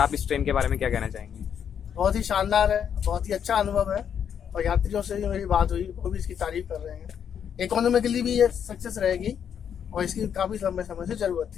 इस ट्रेन के बारे में क्या कहना चाहेंगे? बहुत ही शानदार है, बहुत ही अच्छा अनुभव है और यात्रियों से भी मेरी बात हुई, वो भी इसकी तारीफ कर रहे हैं। इकोनॉमिकली भी ये सक्सेस रहेगी और इसकी काफ़ी लंबे समय से ज़रूरत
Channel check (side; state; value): right; quieter; 8.3 dB